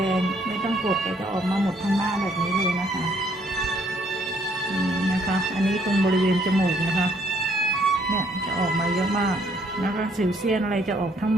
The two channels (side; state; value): both; normal; correlation 0.67